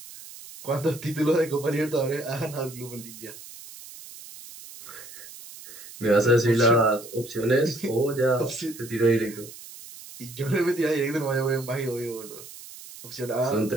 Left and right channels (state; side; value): noise; right; hiss, 16 dB below the sound